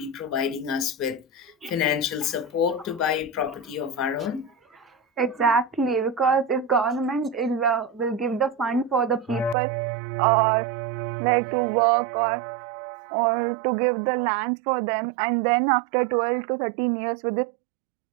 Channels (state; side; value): drops out; left; at 9.6 s